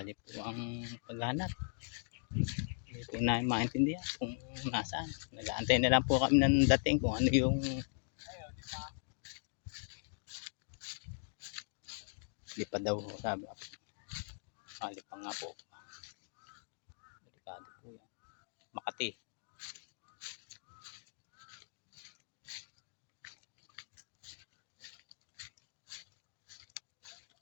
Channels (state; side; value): silent; right; digital silence